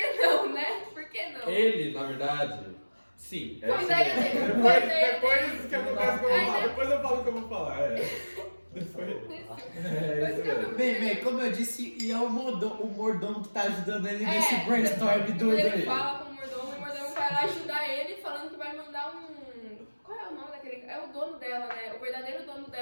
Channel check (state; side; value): inverted; both; correlation -1.00